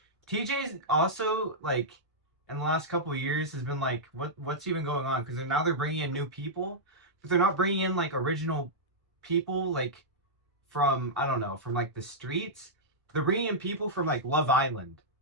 also like in the last couple of years has been like, what's even going on? Because now they're bringing in new people, but they're not bringing in like original people like from I don't know from like the streets. They're bringing in people from like Love Island,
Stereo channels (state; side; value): normal; both; correlation -0.11